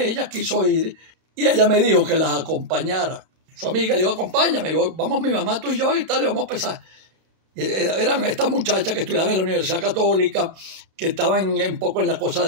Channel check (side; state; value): left; late; 32 ms